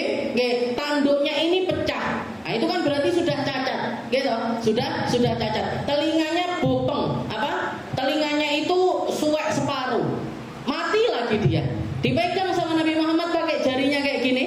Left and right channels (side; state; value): both; identical; correlation 1.00